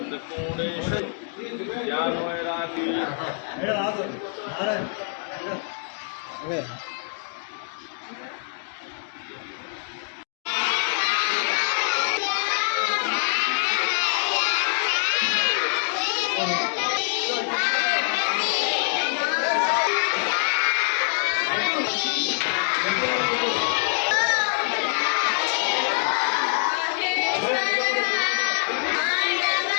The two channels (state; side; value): silent; right; 62 dB below the other